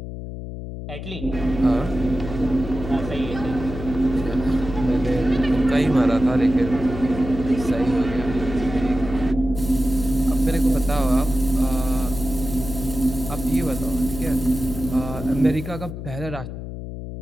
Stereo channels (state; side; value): noise; left; hum, 9 dB below the sound